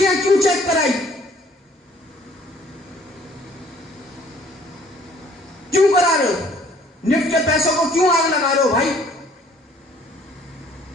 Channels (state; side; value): normal; both; correlation 0.58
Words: क्यों चेक कराई, क्यों करा रहे हो? निफ्ट के पैसों को क्यों आग लगा रहे हो भाई?